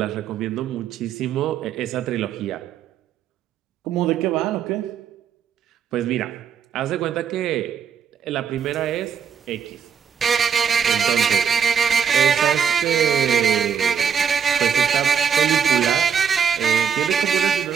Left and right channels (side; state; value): left; quieter; 7.4 dB